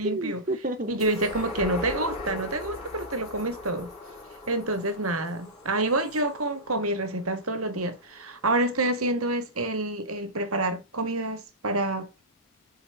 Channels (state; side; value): normal; both; correlation -0.16